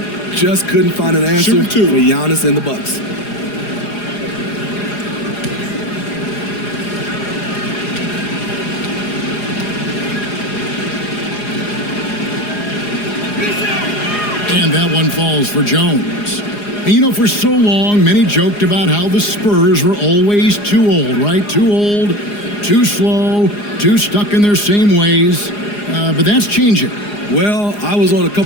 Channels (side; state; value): right; late; 4.9 ms